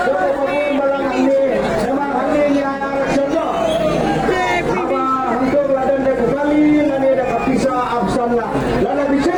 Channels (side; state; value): both; identical; correlation 1.00